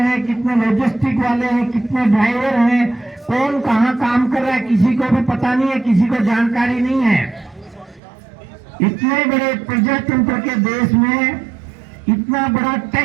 कितने लॉजिस्टिक वाले हैं, कितने ड्राइवर हैं, कौन कहाँ काम कर रहा है किसी को भी पता नहीं है, किसी को जानकारी नहीं है। इतने बड़े प्रजातंत्र के देश में इतना बड़ा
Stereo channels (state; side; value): drops out; left; at 8.0 s